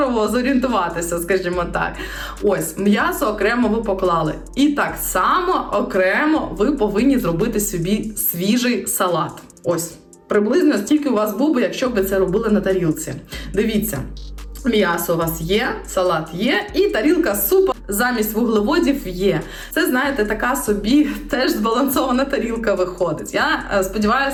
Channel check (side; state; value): both; identical; correlation 1.00